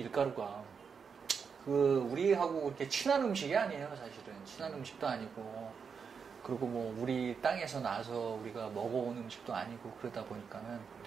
우리하고 이렇게 친한 음식이 아니에요, 사실은. 친한 음식도 아니고, 그리고 뭐, 우리 땅에서 나서 우리가 먹어온 음식도 아니고, 그러다 보니까는,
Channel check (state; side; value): quieter; left; 6.1 dB